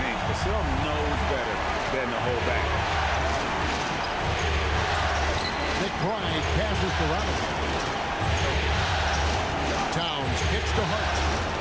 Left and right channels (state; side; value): identical; both; correlation 1.00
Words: Vassell knows better than to hold back. McBride passes to Robinson. Towns kicks to Hart.